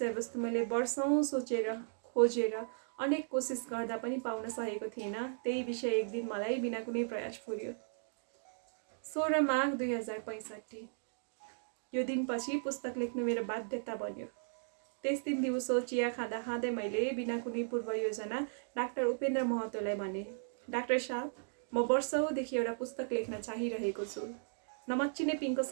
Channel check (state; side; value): silent; left; digital silence